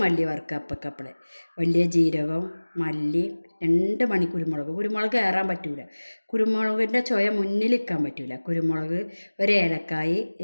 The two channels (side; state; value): both; inverted; correlation -1.00